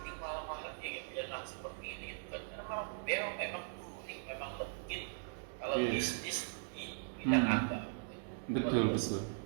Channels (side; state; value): left; silent; digital silence